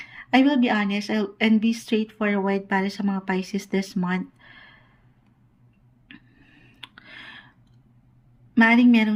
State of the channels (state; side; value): identical; both; correlation 1.00